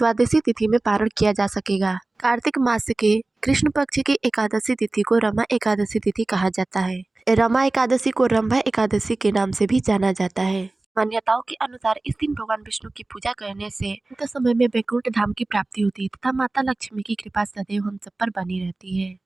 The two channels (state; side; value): quieter; left; 3.0 dB